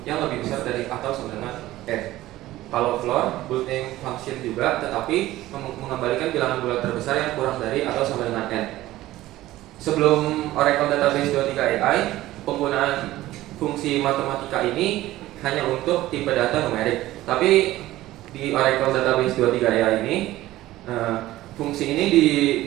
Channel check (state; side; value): quieter; left; 16.0 dB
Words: yang lebih besar dari atau sama dengan n. Kalau floor, built-in function juga, tetapi mengembalikan bilangan bulat terbesar yang kurang dari atau sama dengan n. Sebelum Oracle Database 23 AI, penggunaan fungsi matematika ini hanya untuk tipe data numerik. Tapi di Oracle Database 23 AI ini, fungsi ini